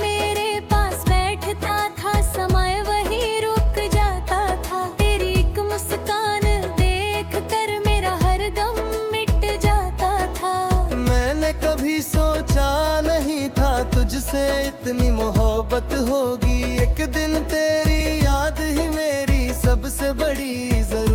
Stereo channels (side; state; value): both; identical; correlation 1.00